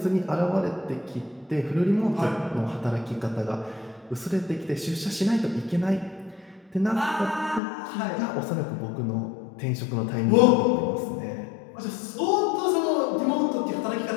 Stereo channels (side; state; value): right; drops out; at 7.6 s